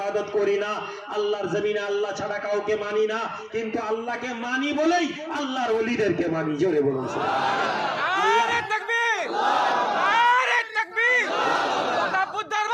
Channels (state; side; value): identical; both; correlation 1.00